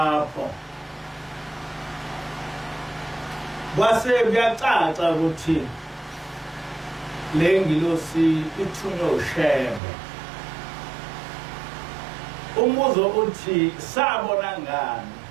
kwase kuyacaca ukuthi le ngilosi ithunywe uShembe. Umbuzo uthi sabona ngani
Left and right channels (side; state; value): left; drops out; at 9.8 s